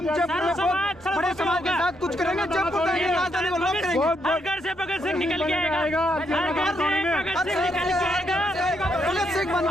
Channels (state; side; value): normal; both; correlation 0.77